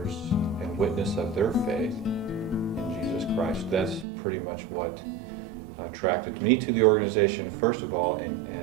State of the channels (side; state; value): left; drops out; at 4.0 s